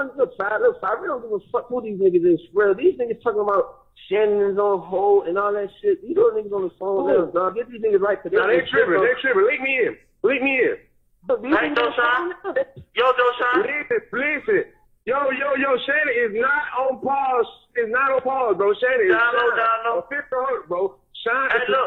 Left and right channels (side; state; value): both; identical; correlation 1.00